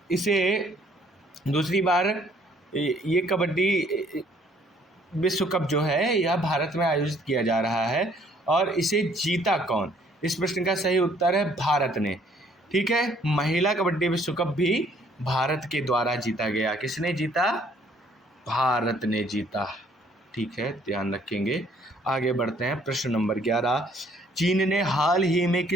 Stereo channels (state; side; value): normal; both; correlation 0.62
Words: इसे दूसरी बार ये कबड्डी विश्व कप जो है यह भारत में आयोजित किया जा रहा है। और इसे जीता कौन? इस प्रश्न का सही उत्तर है भारत ने। ठीक है, महिला कबड्डी विश्व कप भी भारत के द्वारा जीता गया। किसने जीता? भारत ने जीता। ठीक है, ध्यान रखेंगे। आगे बढ़ते हैं प्रश्न नंबर 11। चीन ने हाल ही में